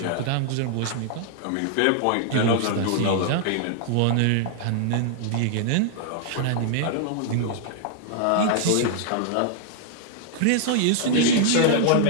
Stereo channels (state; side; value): different; both; correlation -0.01